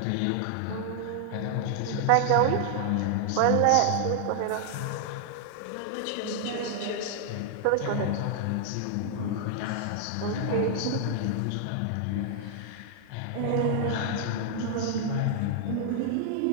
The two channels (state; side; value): different; both; correlation -0.01